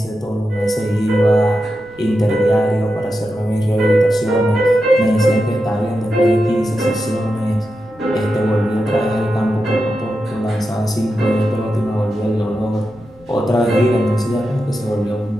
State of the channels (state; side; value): noise; left; rumble, 26 dB below the sound